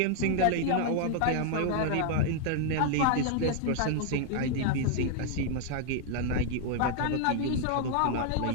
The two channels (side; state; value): both; different; correlation 0.00